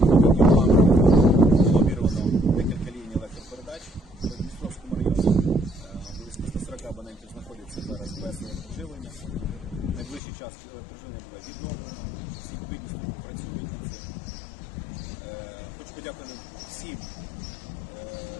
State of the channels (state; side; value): drops out; right; at 10.2 s